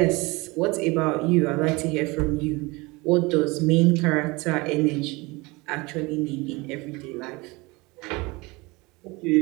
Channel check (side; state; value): left; quieter; 24.4 dB